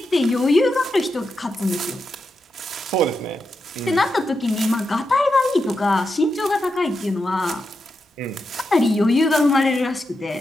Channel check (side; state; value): both; normal; correlation 0.87